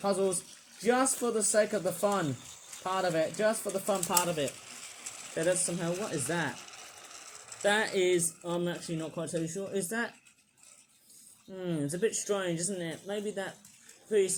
puzzles just for the sake of the fun part of it. Just for the fun part of it. Okay, that's somehow... What is that? That is... I'm actually not quite totally sure. Is that... it's a bit strange, isn't it? Maybe that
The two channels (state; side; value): identical; both; correlation 1.00